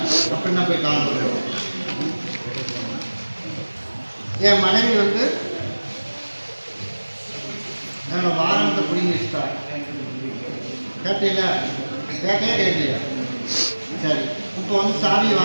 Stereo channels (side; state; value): both; inverted; correlation -1.00